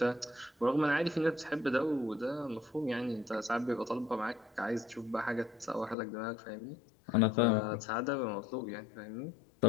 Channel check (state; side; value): drops out; right; at 6.0 s